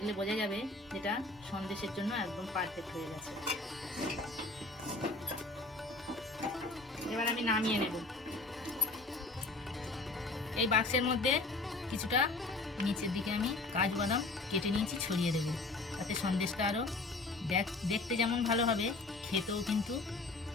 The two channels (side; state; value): right; quieter; 3.2 dB